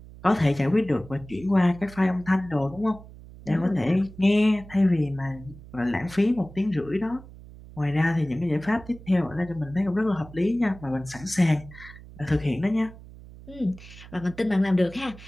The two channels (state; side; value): noise; right; hum, 18 dB below the sound